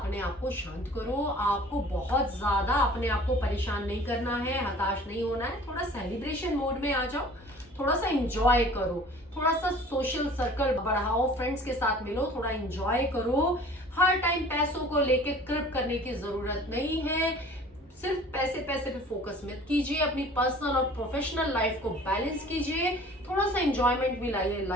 आप को शांत करो। आपको बहुत ज्यादा अपने आप को परेशान नहीं करना है, हताश नहीं होना है। थोड़ा सेलिब्रेशन मोड में आ जाओ, थोड़ा सा एंजॉय करो, थोड़ा सा सोशल सर्कल बढ़ाओ, फ्रेंड्स के साथ मिलो, थोड़ा एंजॉय करो। हर टाइम पैसों को लेके कृप करने की जरूरत नहीं है। सिर्फ पैसे पे फोकस मत कीजिए। अपनी पर्सनल और प्रोफेशनल लाइफ को बैलेंस कीजिए। थोड़ा सा एंजॉयमेंट भी लाइए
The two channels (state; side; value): normal; both; correlation 0.47